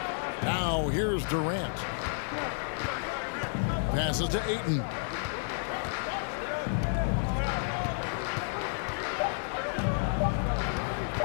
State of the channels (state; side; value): silent; right; digital silence